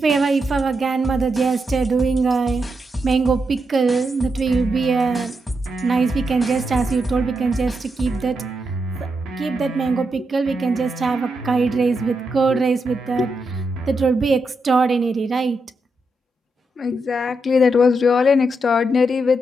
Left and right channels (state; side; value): normal; both; correlation 0.84